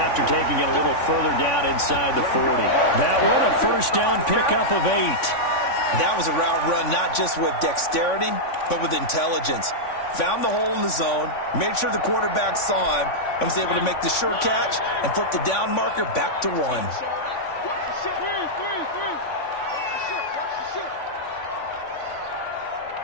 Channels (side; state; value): right; late; 3.5 ms